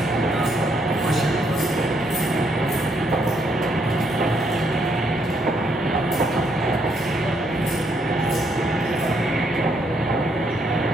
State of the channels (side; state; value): both; normal; correlation 0.73